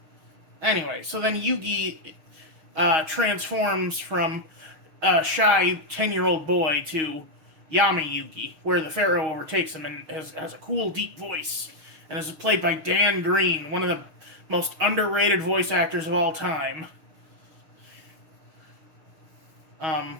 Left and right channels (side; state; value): left; late; 6.3 ms